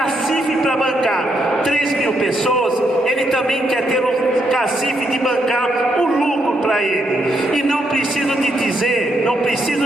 para bancar 3.000 pessoas, ele também quer ter o cacife de bancar o lucro para ele. E não preciso dizer,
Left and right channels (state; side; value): normal; both; correlation 0.77